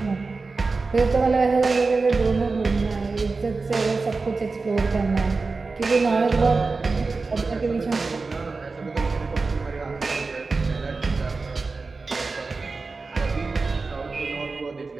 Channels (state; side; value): quieter; left; 4.0 dB